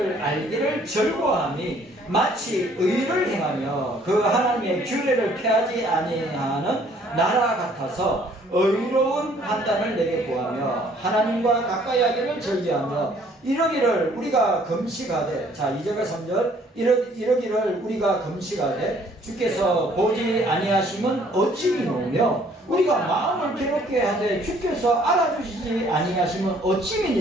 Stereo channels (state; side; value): normal; both; correlation 0.60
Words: 알기를 즐거워하니 마치 의를 행하며 그 하나님의 규례를 폐하지 아니하는 나라 같아서 의로운 판단을 내게 구하며 하나님과 가까이 하기를 즐겨하며 이러기를 우리가 금식하되, 자 2절과 3절 이러기를 우리가 금식하되 주께서 보지 아니하심은 어찌 미노며 우리가 마음을 괴롭게 하되 주께서 알아주시지 아니하심은 어찌